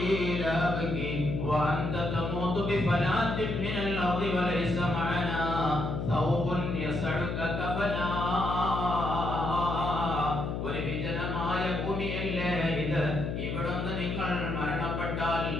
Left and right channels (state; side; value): noise; left; hum, 2 dB below the sound